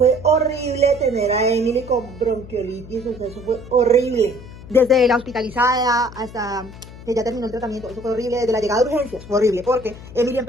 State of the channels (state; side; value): noise; left; hum, 16 dB below the sound